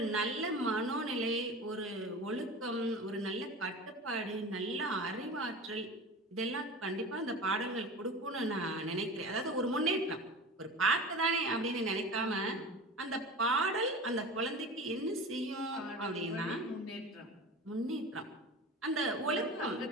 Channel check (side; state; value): both; normal; correlation 0.33